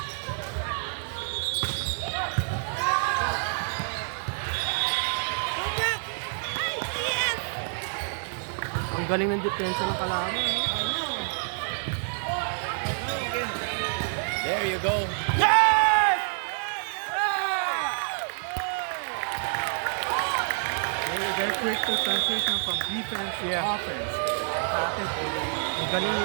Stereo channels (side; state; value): left; silent; digital silence